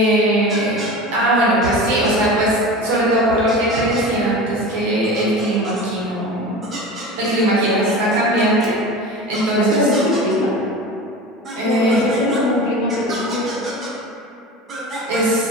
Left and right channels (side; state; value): both; normal; correlation 0.32